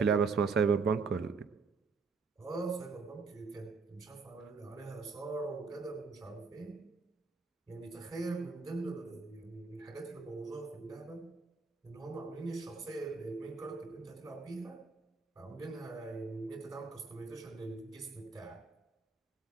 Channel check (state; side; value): quieter; left; 4.8 dB